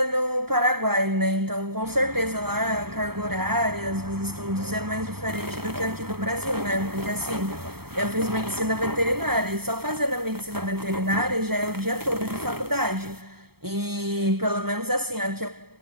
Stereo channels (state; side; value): late; left; 0.96 ms